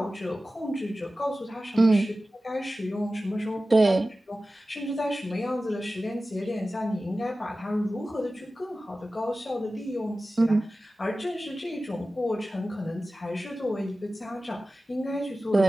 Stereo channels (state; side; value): normal; both; correlation 0.95